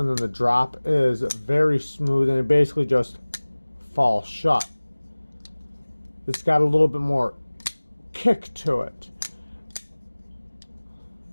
then the drop is very smooth, and it basically just falls shut. It's got a little bit more kick to it.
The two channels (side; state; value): both; inverted; correlation -1.00